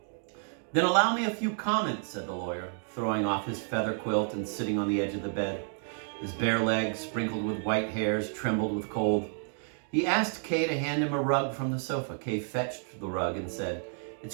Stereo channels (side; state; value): left; silent; 57 dB below the other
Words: "Then allow me a few comments," said the lawyer, throwing off his feather quilt and sitting on the edge of the bed. His bare legs, sprinkled with white hairs, trembled with cold. He asked Kay to hand him a rug from the sofa. Kay fetched the rug and said, "It's